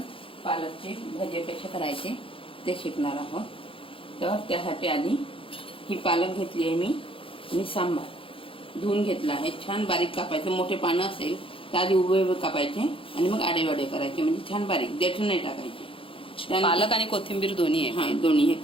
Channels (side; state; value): right; late; 0.26 ms